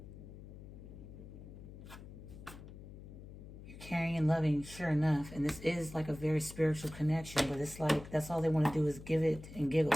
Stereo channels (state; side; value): noise; left; hum, 14 dB below the sound